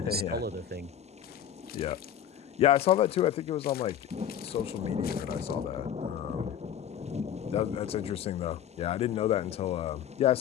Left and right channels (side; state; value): right; quieter; 9.8 dB